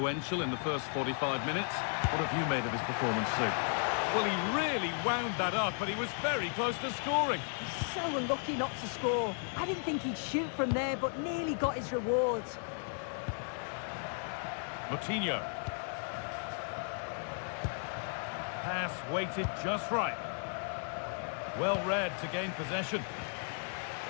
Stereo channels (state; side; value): silent; right; 55 dB below the other